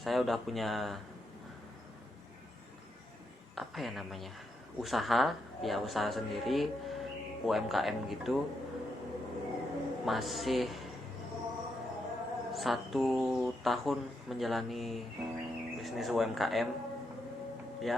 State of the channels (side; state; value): both; normal; correlation 0.82